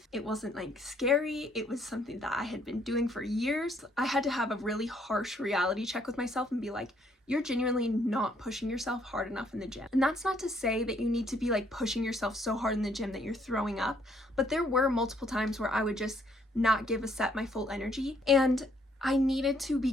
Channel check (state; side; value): normal; both; correlation 0.67